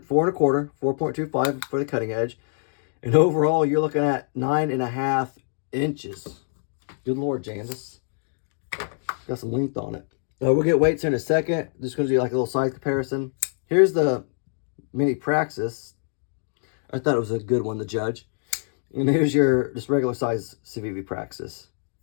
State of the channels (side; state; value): right; silent; 62 dB below the other